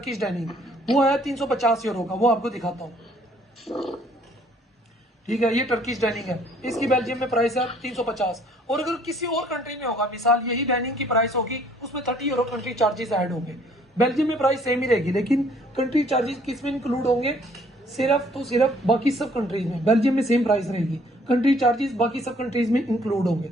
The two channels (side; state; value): both; normal; correlation 0.60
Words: डाइनिंग, वो है 350 यूरो का, वो आपको दिखाता हूँ, ठीक है। ये टर्किश डाइनिंग है, इसकी बेल्जियम में प्राइस है 350। और अगर किसी और कंट्री में होगा, मिसाल यही डाइनिंग की प्राइस होगी, उसमें 30 यूरो कंट्री चार्जेस ऐड होंगे। बेल्जियम में प्राइस सेम ही रहेगी, लेकिन कंट्री चार्जेस किस में इंक्लूड होंगे, सिर्फ तो सिर्फ बाकी सब कंट्रीज में। बेल्जियम में सेम प्राइस रहेगी, कंट्री चार्जेस बाकी सब कंट्रीज में इंक्लूड होंगे।